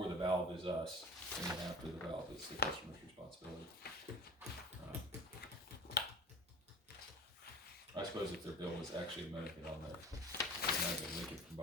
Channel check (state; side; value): normal; both; correlation 0.37